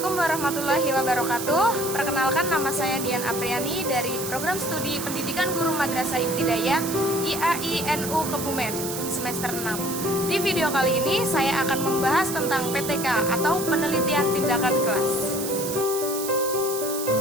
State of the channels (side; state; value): right; noise; hiss, 6 dB below the sound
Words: warahmatullahi wabarakatuh. Perkenalkan, nama saya Dian Apriani dari Program Studi Pendidikan Guru Madrasah Ibtidaiyah IAI-NU Kebumen semester 6. Di video kali ini saya akan membahas tentang PTK atau penelitian tindakan kelas.